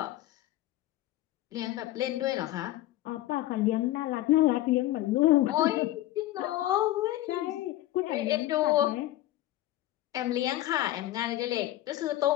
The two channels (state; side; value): quieter; right; 15.2 dB